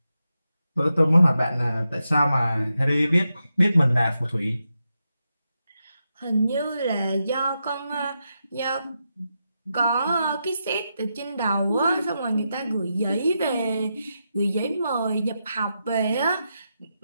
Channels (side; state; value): both; inverted; correlation -0.86